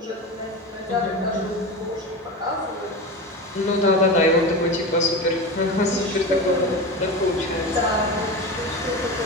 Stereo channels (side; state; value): both; normal; correlation 0.25